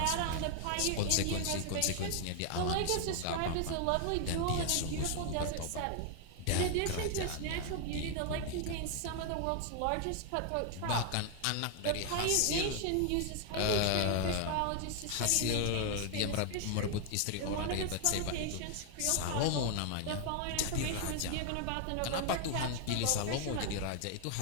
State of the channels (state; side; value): different; both; correlation 0.00